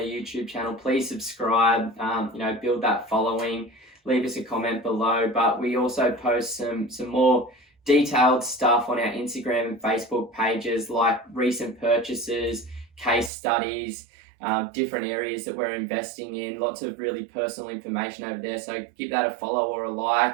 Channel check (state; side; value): drops out; left; at 13.3 s